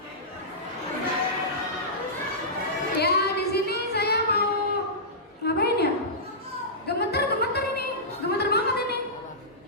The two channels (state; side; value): normal; both; correlation -0.16